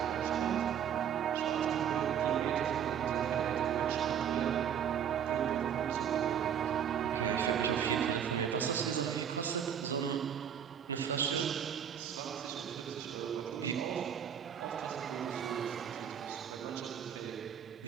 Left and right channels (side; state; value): left; quieter; 8.7 dB